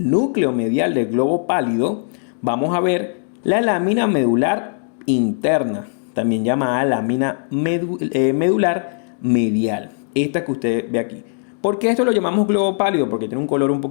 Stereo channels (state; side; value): silent; right; digital silence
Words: núcleo medial del globo pálido vamos a ver la lámina medular interna, también llamada lámina medular medial. Esta que usted ve aquí. ¿Por qué esto lo llamamos globo pálido? Porque tiene un color un